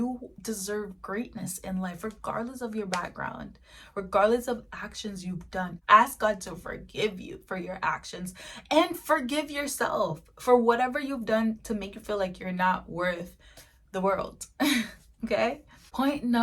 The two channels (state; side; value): identical; both; correlation 1.00